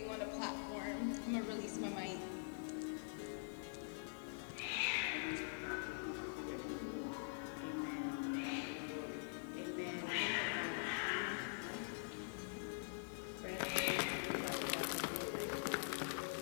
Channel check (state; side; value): silent; right; digital silence